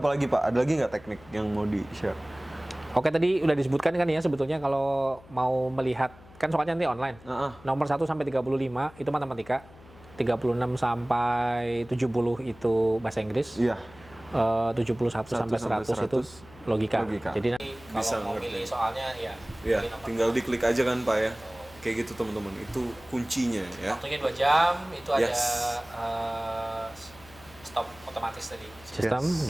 lagi, Pak? Ada lagi nggak teknik yang mau di-share? Oke, tadi udah disebutkan kan ya sebetulnya kalau mau melihat, kan soalnya nanti online. Nomor 1 sampai 35 itu matematika. 36 sampai 70 itu bahasa Inggris. Iya. 71 sampai 100 itu logika. Jadi nanti Bisa kalau mau ngerti. pilih soalnya ya Iya, pilih nomor tinggal diklik aja kan, Pak ya. Kayak gitu, teman-teman. Itu kuncinya ya. Waktunya 2 jam, itu ada Yes. stop otomatis tadi. Sistem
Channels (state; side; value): noise; left; hum, 23 dB below the sound